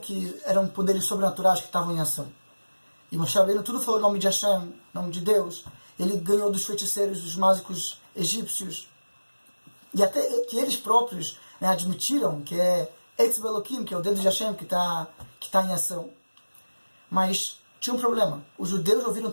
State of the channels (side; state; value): both; inverted; correlation -1.00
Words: eram poderes sobrenaturais que estavam em ação. E Moshe Rabbeinu tudo falou em nome de Hashem, nome de Deus. Ele ganhou dos feiticeiros, dos mágicos egípcios. E até que eles próprios, né, admitiram que é Etzbe Elohim, que é o dedo de Hashem que tá em ação. Mas tinha um problema. Os judeus ouviram